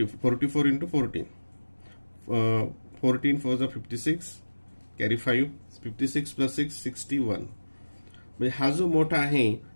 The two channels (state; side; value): inverted; both; correlation -1.00